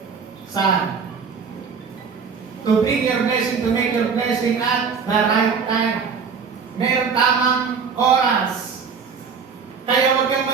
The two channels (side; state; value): left; quieter; 5.8 dB